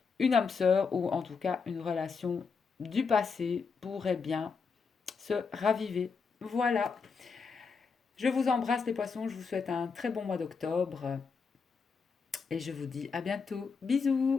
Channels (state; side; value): quieter; right; 5.3 dB